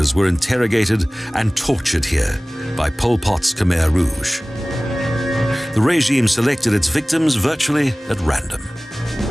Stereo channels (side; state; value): both; normal; correlation 0.98